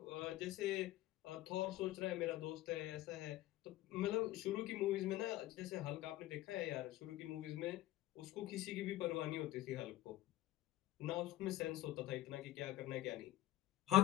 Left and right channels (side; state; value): right; quieter; 15.3 dB